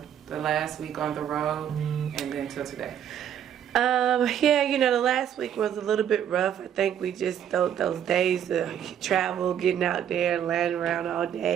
last week on the road and then till today? Yeah, the last week was a little bit rough. I think we just those days of travel, getting out there and laying around all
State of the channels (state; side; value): quieter; left; 9.5 dB